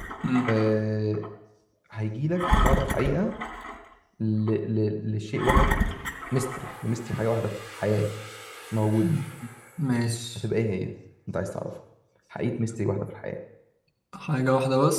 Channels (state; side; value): identical; both; correlation 1.00